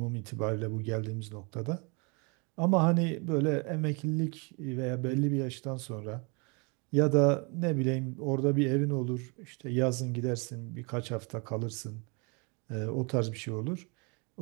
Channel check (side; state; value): left; quieter; 32.2 dB